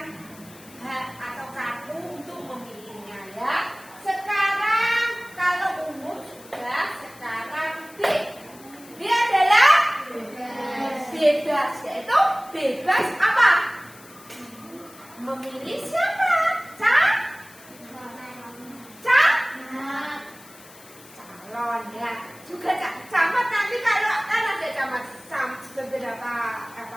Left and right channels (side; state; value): left; noise; hiss, 22 dB below the sound